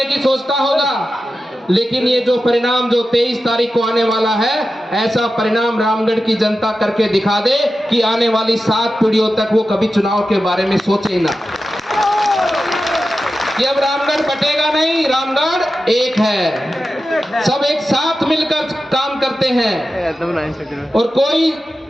की सोचता होगा। लेकिन ये जो परिणाम जो 23 तारीख को आने वाला है, ऐसा परिणाम रामगढ़ की जनता करके दिखा दे कि आने वाली 7 पीढ़ियों तक वो कभी चुनाव के बारे में सोचे ही ना कि अब रामगढ़ बटेगा नहीं, रामगढ़ एक है, सब एक साथ मिलकर काम करते हैं और कोई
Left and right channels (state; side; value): normal; both; correlation 0.92